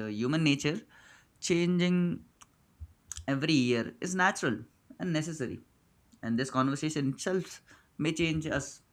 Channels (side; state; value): both; identical; correlation 1.00